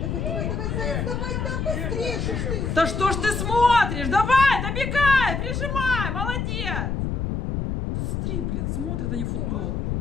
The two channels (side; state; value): left; noise; rumble, 1 dB below the sound